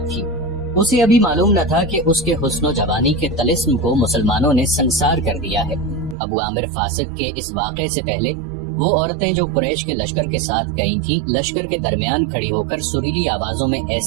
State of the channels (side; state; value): left; drops out; at 6.2 s